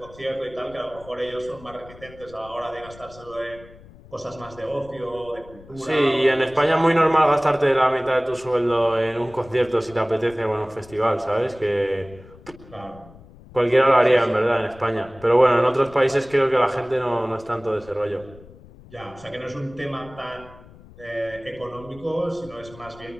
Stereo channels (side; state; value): left; noise; rumble, 21 dB below the sound